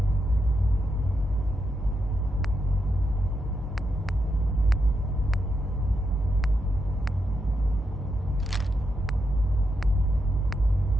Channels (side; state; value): both; normal; correlation 0.83